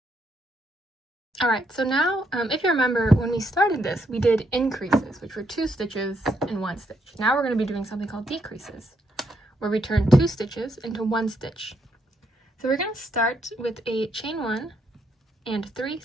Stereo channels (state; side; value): normal; both; correlation 0.76